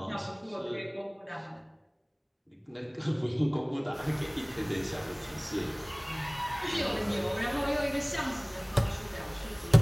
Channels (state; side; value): identical; both; correlation 1.00